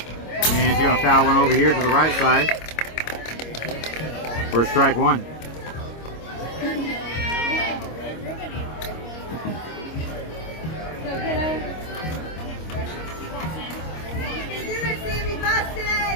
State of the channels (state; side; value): late; right; 25 ms